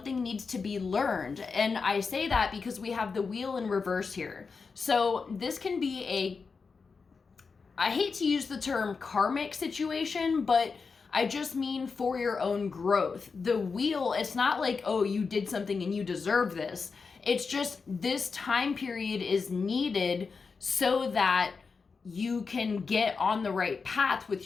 needs to be learned. And I say that because we have the wheel in reverse here. So this can be I hate to use the term karmic situation, but I just mean for your own growth. The wheel, it's not like, oh, you did something and you deserve this. It's just this time period is needed so that you can get on the right path with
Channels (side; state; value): right; quieter; 4.9 dB